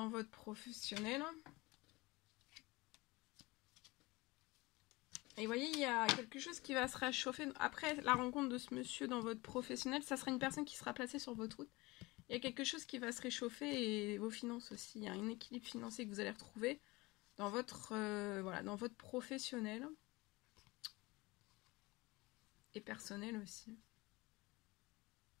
votre professionnel. Et vous voyez, il y a quelque chose qui va se réchauffer. Après la rencontre de ce monsieur dans votre professionnel, ça sera une personne qui sera placée sur votre route. Il y a quelque chose qui va se réchauffer et vos finances aussi. Il y a un équilibre financier que vous allez retrouver dans votre, voilà, dans votre professionnel. Et personnel aussi.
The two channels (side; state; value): right; quieter; 22.5 dB